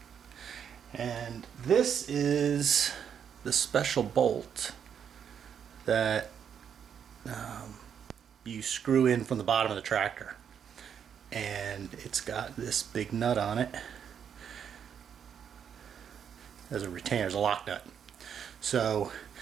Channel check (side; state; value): left; quieter; 8.0 dB